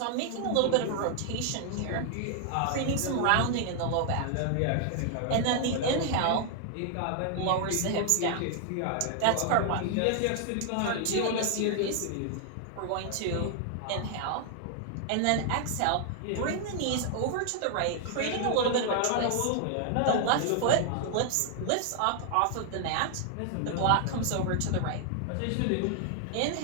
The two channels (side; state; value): both; different; correlation 0.00